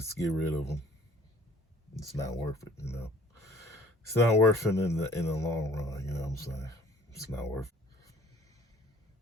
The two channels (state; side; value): normal; both; correlation 0.54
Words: get rid of them. It's not worth it, you know. It's not worth it in the long run, you know what I'm saying? It's not worth it.